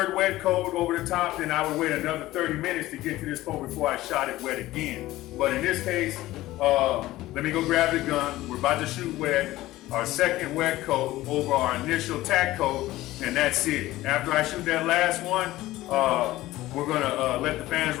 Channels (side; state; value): right; quieter; 16.6 dB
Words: wet coat over the top, then I would wait another 30 minutes to get to this coat before I shot it wet again. But in this case, let me go grab the gun. We're about to shoot wet, our second wet coat over our initial tack coat, and that's it. After I shoot that last one, we're gonna let the fans